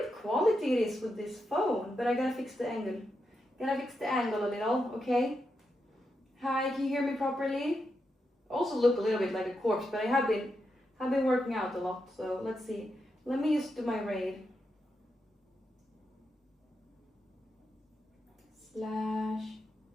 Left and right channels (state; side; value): normal; both; correlation 0.85